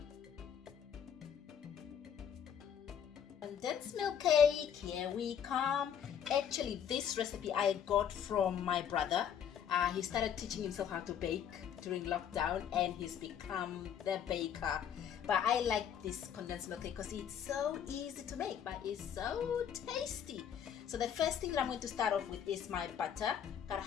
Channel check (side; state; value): right; quieter; 8.6 dB